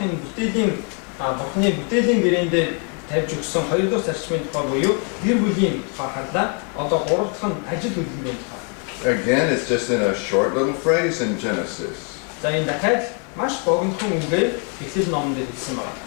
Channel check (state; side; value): quieter; right; 39.5 dB